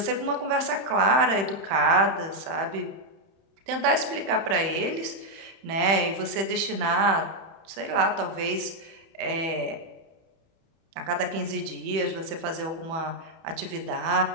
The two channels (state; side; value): late; left; 31 ms